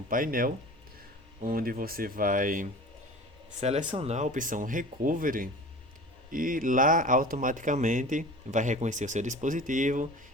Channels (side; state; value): both; normal; correlation 0.38